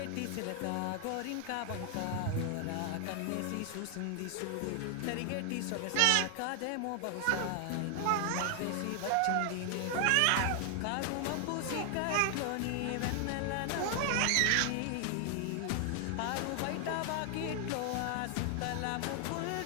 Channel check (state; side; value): different; both; correlation 0.00